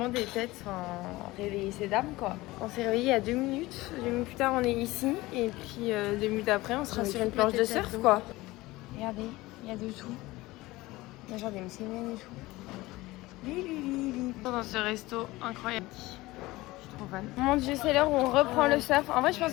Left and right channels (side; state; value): right; quieter; 19.5 dB